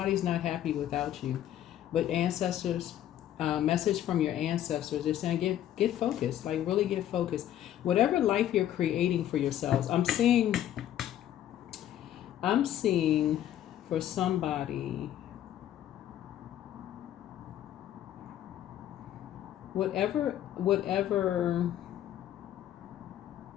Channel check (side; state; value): right; quieter; 11.8 dB